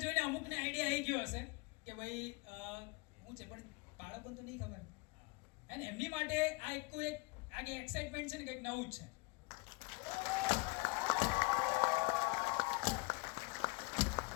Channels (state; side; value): quieter; right; 27.1 dB